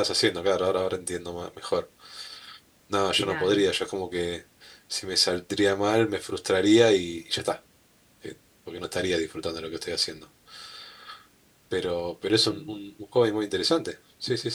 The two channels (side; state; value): both; identical; correlation 1.00